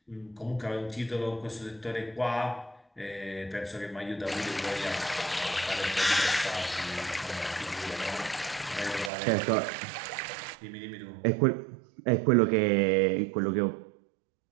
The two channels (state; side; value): drops out; left; at 9.1 s